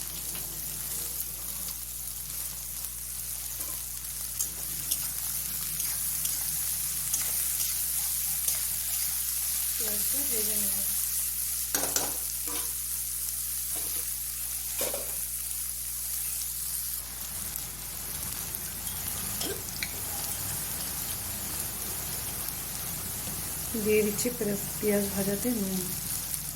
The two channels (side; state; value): left; noise; hum, 12 dB below the sound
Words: পেঁয়াজটা ভেজে নেব। দিয়ে দিচ্ছি পেঁয়াজ ভাজাতে নুন।